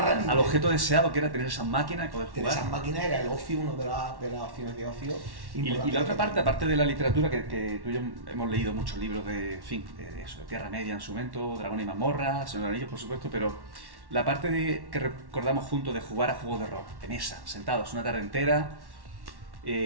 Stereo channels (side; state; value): left; late; 1.1 ms